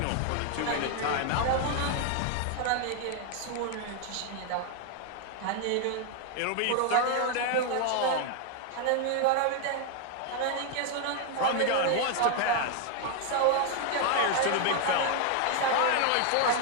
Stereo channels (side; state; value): both; different; correlation 0.00